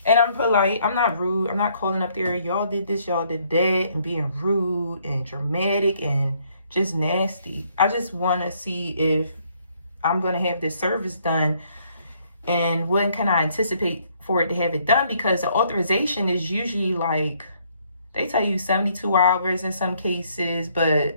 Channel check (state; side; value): inverted; both; correlation -0.68